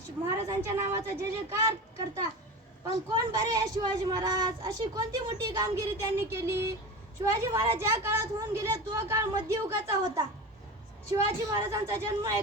महाराजांच्या नावाचा जय जयकार करता. पण कोण बरे आहे शिवाजी महाराज? अशी कोणती मोठी कामगिरी त्यांनी केली? शिवाजी महाराज ज्या काळात होऊन गेले तो काळ मध्ययुगाचा होता. शिवाजी महाराजांचा जन्म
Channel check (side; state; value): both; normal; correlation 0.29